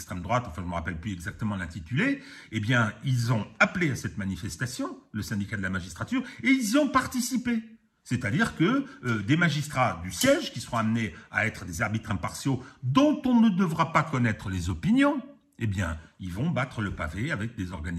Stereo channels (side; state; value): both; identical; correlation 1.00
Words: droite, enfin je ne me rappelle plus exactement l'intitulé, eh bien ils ont appelé à cette manifestation, le syndicat de la magistrature, et ils y ont participé. C'est-à-dire que des magistrats du siège, qui seront amenés à être des arbitres impartiaux, dont on ne devra pas connaître les opinions, eh bien, ils vont battre le pavé avec des